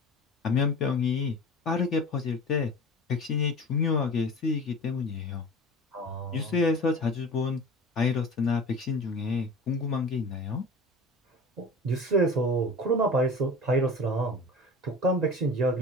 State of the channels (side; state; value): both; normal; correlation 0.36